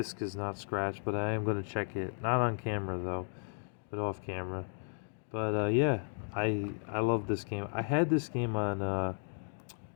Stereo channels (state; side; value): silent; right; 55 dB below the other